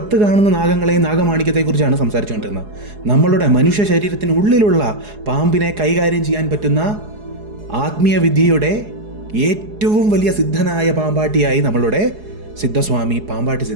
കാണുന്ന നാഗങ്ങളെയും നാഗമാണിക്യത്തെക്കുറിച്ചാണ് സംസാരിച്ചുകൊണ്ടിരുന്നത്. നമ്മളുടെ മനുഷ്യ ശരീരത്തിനുള്ളിലുള്ള പാമ്പിനെ കൈകാര്യം ചെയ്യാൻ പറ്റുന്ന ആത്മീയ വിദ്യയുടെ ഏറ്റവും വലിയ സിദ്ധനായ പാമ്പാട്ടിയായി നമ്മളുടെ സിദ്ധസ്വാമി പാമ്പാട്ടി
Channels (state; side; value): late; left; 4.8 ms